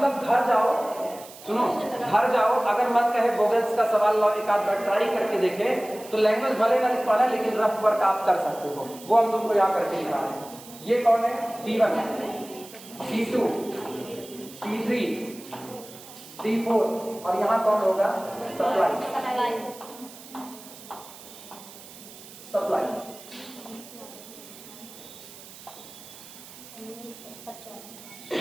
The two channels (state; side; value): noise; right; hiss, 17 dB below the sound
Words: घर जाओ, सुनो घर जाओ, अगर मन कहे वोवेल्स का सवाल लो एक आध बार ट्राई करके देखे तो लैंग्वेज भले ना लिख पाना लेकिन रफ वर्क आप कर सकते हो, वो हम तुमको यहाँ करके दिखा रहे हैं। ये कौन है? D1, D2, D3, D4 और यहाँ कौन होगा? सप्लाई।